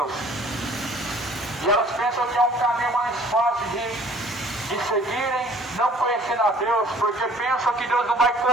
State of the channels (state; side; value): normal; both; correlation 0.54